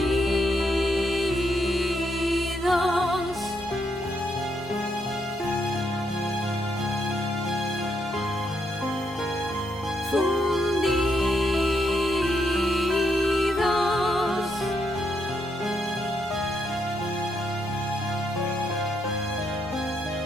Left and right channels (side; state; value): both; normal; correlation 0.78